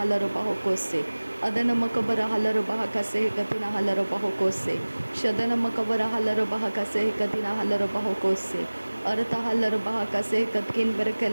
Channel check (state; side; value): inverted; both; correlation -1.00